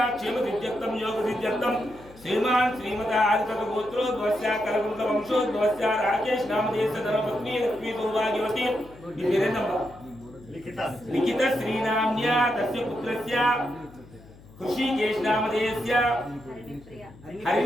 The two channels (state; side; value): noise; left; hum, 22 dB below the sound